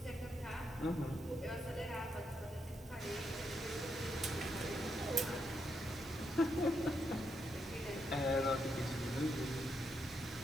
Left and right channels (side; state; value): both; normal; correlation 0.81